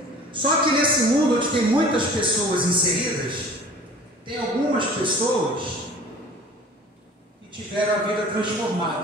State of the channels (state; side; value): normal; both; correlation 0.45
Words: Só que nesse mundo onde tem muitas pessoas inseridas, tem algumas pessoas que tiveram a vida